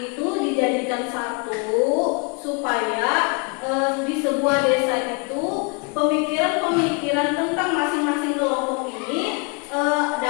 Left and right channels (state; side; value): quieter; right; 33.5 dB